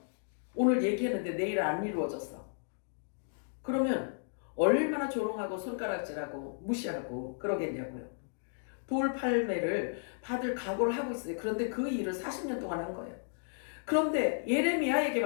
오늘 얘기했는데 내일 안 이루어졌어. 그러면 얼마나 조롱하고 손가락질하고 무시하고 그러겠냐고요. 돌팔매를 받을 각오를 하고 있어요. 그런데 그 일을 40년 동안 한 거예요. 그런데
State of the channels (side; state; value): right; silent; digital silence